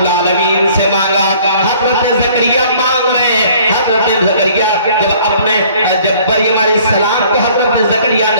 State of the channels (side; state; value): both; inverted; correlation -0.55